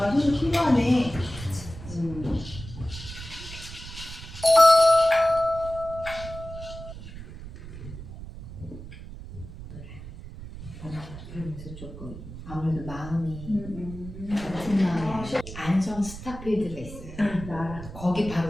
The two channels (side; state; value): right; noise; rumble, 12 dB below the sound